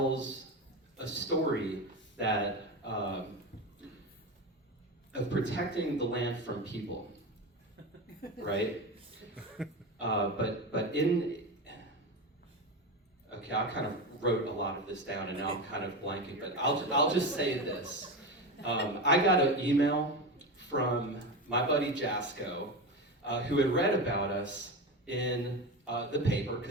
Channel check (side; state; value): both; normal; correlation 0.21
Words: a story that of protecting the land from people, right? Okay, I kind of wrote a lot of this down, and now I'm kind of blanking, but I'll just say this. I got an email from my buddy Jasco, who had read about us in the paper,